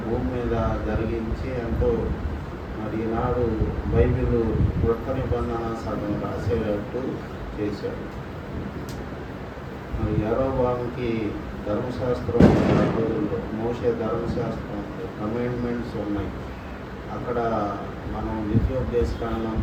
భూమి మీద జరిగించి ఎంతో మరి ఈనాడు బైబిల్ కొత్త నిబంధన సగం రాసేటట్టు చేశాడు. మరి యారోబాముకి ధర్మశాస్త్రం రోజుల్లో మోషే ధర్మశాస్త్రం కమాండ్మెంట్స్ ఉన్నాయి. అక్కడ మనం ద్వితీయోపదేశకాండం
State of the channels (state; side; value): identical; both; correlation 1.00